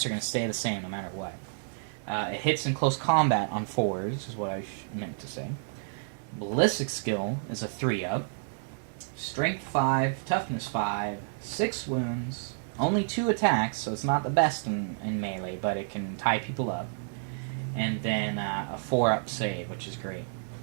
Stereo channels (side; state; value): left; silent; digital silence